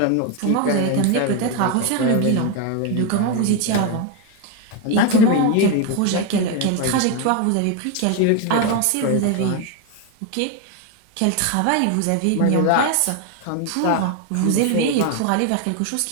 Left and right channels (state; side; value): different; both; correlation 0.02